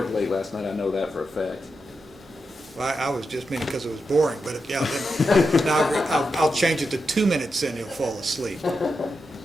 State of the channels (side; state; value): both; normal; correlation 0.87